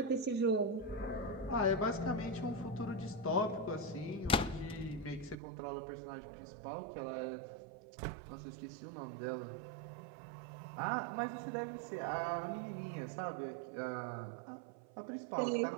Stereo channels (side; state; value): left; drops out; at 5.4 s